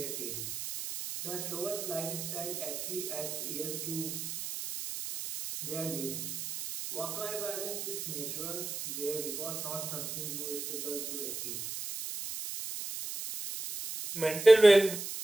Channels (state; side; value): noise; right; hiss, 6 dB below the sound